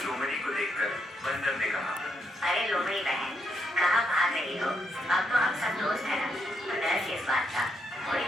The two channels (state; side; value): normal; both; correlation 0.78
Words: लोमड़ी को देखकर बंदर ने कहा, अरे लोमड़ी बहन, कहाँ भाग रही हो? अब तो हम सब दोस्त हैं ना, तो डर किस बात का? थोड़ी